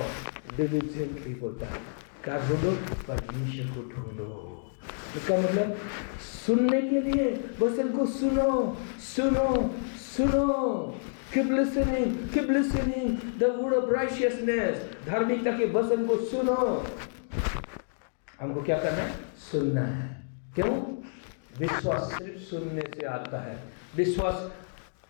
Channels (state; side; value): silent; right; digital silence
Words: डिलिजेंटली बोलता है, क्या ढूंढो? परमेश्वर को ढूंढो। इसका मतलब सुनने के लिए वचन को सुनो, सुनो, सुनो। Keep listening, keep listening the word of righteousness, धार्मिकता के वचन को सुनो। हमको क्या करना है? सुनना है। क्यों? विश्वास सिर्फ सुनने से आता है।